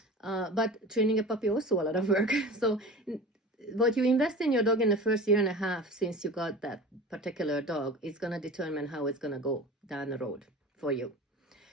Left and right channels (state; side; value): normal; both; correlation 0.36